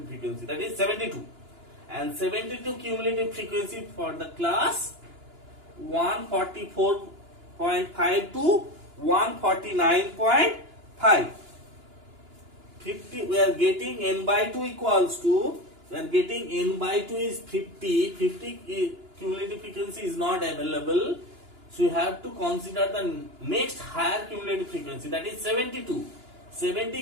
frequency, that is 72, and 72 cumulative frequency for the class 144.5 to 149.5. 50, we are getting N by 2 equals to, we are getting N by 2 is 50. 50 cumulative frequency is not available. So you have to consider the next higher cumulative frequency, that is 72. 70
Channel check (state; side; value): late; left; 2.9 ms